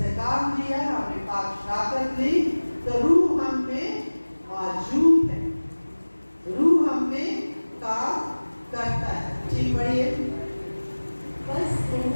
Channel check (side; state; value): both; inverted; correlation -1.00